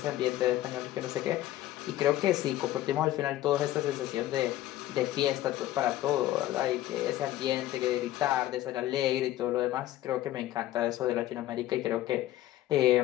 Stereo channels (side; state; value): right; quieter; 14.4 dB